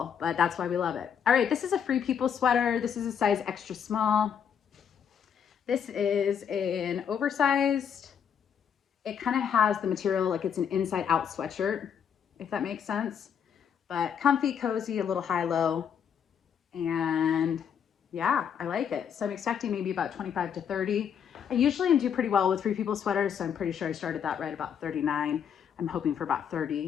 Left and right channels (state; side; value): quieter; right; 7.9 dB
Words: but that's why we love it. All right, this is a Free People sweater. This is a size extra small. This is an oversized, it kind of has the material like it's an inside out sweatshirt, if that makes sense, but comfy, cozy, a little high-low, and yeah, I like it. So I'm expecting maybe about 25 to 30. I usually do pretty well with Free People sweaters, so I'm pretty sure I started that right about 39. I'm hoping for about